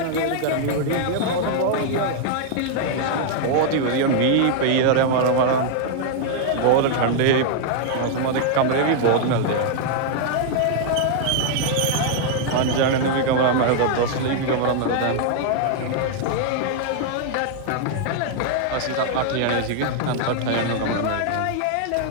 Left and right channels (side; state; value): both; different; correlation 0.00